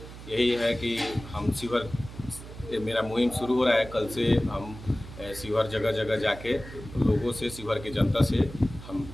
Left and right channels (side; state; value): right; noise; hum, 14 dB below the sound